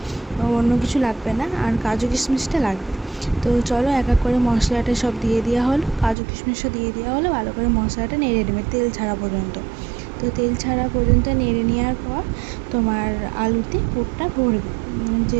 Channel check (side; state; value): left; drops out; at 6.2 s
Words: অন্য কিছু লাগবে না। আর কাজু কিশমিশটা লাগবে। তো চলো এক এক করে মশলাটা সব দিয়ে দেওয়া হলো, কাজু কিশমিশও দিয়ে দেওয়া হলো। ভালো করে মশলাটা নেড়ে নেবে তেল ছাড়া পর্যন্ত। তো তেল ছাড়া পর্যন্ত নেড়ে নেওয়ার পর তোমার আলুতে পুরটা ভরবে,